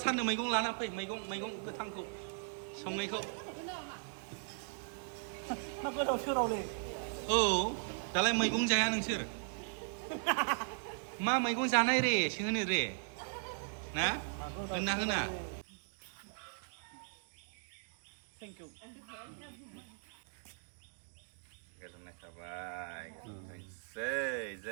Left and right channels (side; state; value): left; silent; digital silence